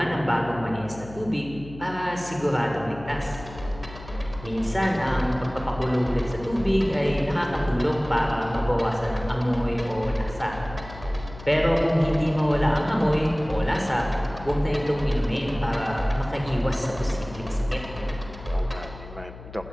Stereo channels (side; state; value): left; noise; hum, 15 dB below the sound